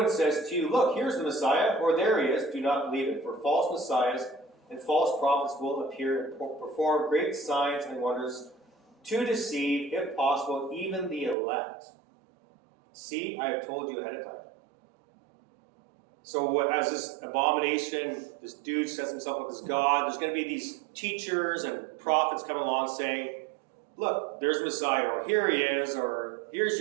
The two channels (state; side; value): drops out; left; at 11.4 s